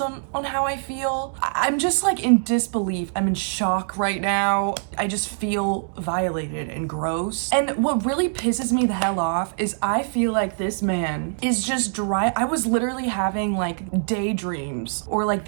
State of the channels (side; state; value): left; silent; 63 dB below the other